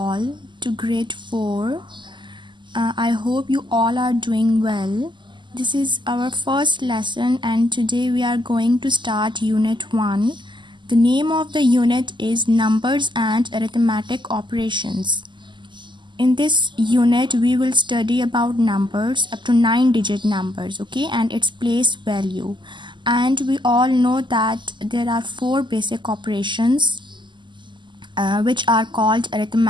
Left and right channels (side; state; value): left; late; 0.22 ms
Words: to grade 4. I hope you all are doing well. This is our first lesson, and today we are going to start Unit 1. The name of the unit is Numbers and Arithmetic Operations. In this unit, we will study about numbers up to 9-digit numbers, okay, and its place value. And we all know that there are 4 basic operations which are called